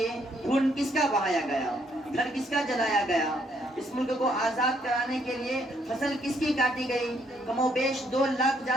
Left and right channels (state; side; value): normal; both; correlation 0.71